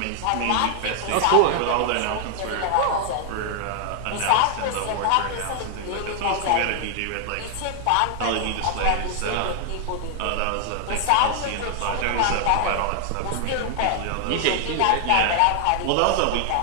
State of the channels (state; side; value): different; both; correlation 0.00